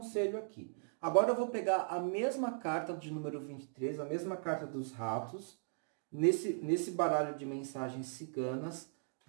aqui. Agora eu vou pegar a mesma carta de número 23, a mesma carta dos ratos, nesse baralho de mensagens ciganas,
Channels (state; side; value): silent; left; digital silence